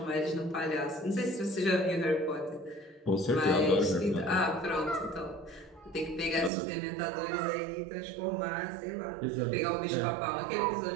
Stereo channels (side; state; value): left; drops out; at 6.5 s